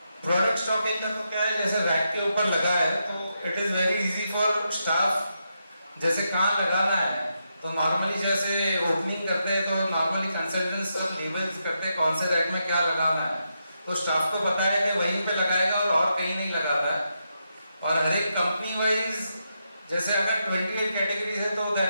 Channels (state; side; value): inverted; both; correlation -0.83